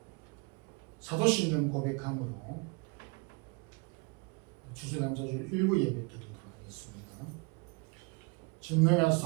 사도신경 고백함으로 추수감사주일 일부 예배 드리도록 하겠습니다.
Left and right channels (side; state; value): left; quieter; 30.4 dB